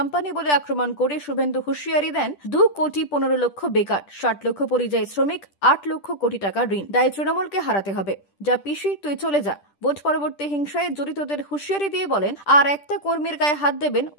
বলে আক্রমণ করে শুভেন্দু হুঁশিয়ারি দেন, 2 কোটি 15 লক্ষ বেকার, 60 লক্ষ পরিযায়ী শ্রমিক, 8 লক্ষ কোটি টাকা ঋণ। দায় তৃণমূলকে হারাতে হবে। যা পিসি, তুই চলে যা। ভোট পরবর্তী হিংসায় জড়িতদের হুঁশিয়ারি দিয়ে বলেন, আর একটা কর্মীর গায়ে হাত দেবেন,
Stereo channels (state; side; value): late; right; 10 ms